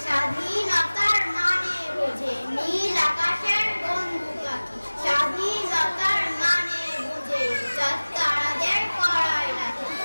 স্বাধীনতার মানে বুঝে নীল আকাশের বন্ধু পাখি, স্বাধীনতার মানে বুঝে তারাদের করায় রাখে,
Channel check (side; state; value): both; inverted; correlation -1.00